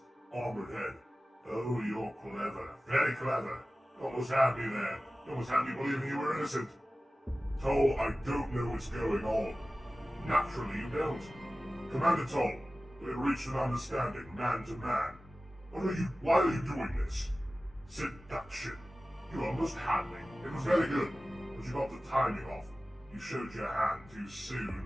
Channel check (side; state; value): both; normal; correlation 0.96